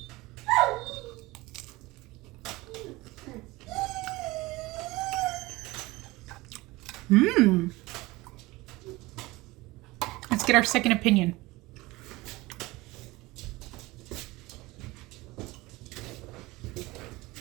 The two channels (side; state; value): left; quieter; 20.9 dB